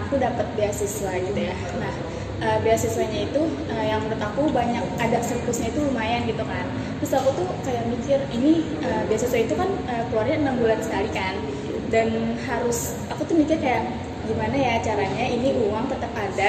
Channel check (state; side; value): identical; both; correlation 1.00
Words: aku dapat beasiswa gitu ya. Nah, beasiswanya itu yang menurut aku banyak, ada surplusnya itu lumayan gitu kan. Terus aku tuh kayak mikir, ini beasiswa itu kan keluarnya 6 bulan sekali kan. Dan aku tuh mikir kayak gimana ya caranya ini uang tetap